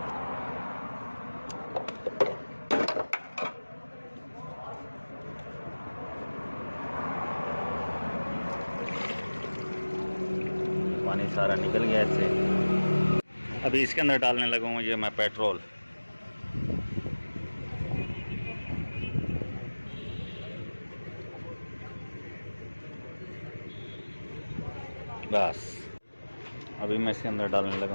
पानी सारा निकल गया इससे। अभी इसके अंदर डालने लगा हूँ ये मैं पेट्रोल। बस अभी मैं इसके अंदर डालने लगा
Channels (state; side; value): inverted; both; correlation -1.00